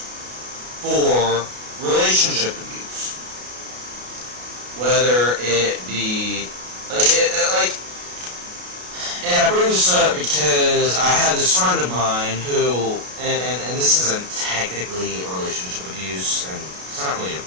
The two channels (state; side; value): late; left; 33 ms